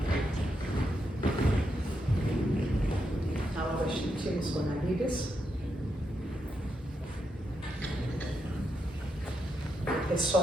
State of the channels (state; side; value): normal; both; correlation 0.82